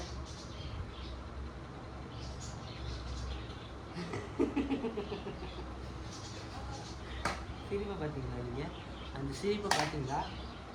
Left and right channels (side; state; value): both; identical; correlation 1.00